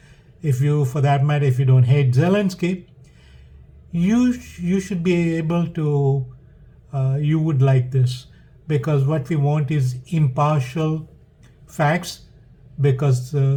if you, for that matter, if you don't hate Zelensky, you should be able to, you would like this, because what we want is impartial facts, because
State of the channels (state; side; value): identical; both; correlation 1.00